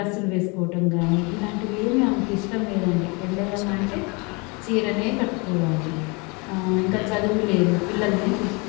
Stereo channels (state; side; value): quieter; right; 29.6 dB